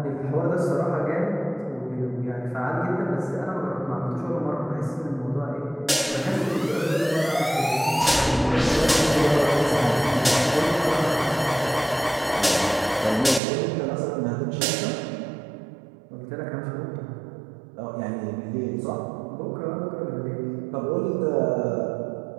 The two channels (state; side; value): drops out; left; at 13.4 s